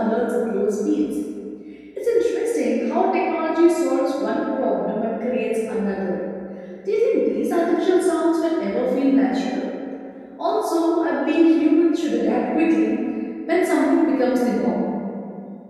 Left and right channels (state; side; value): identical; both; correlation 1.00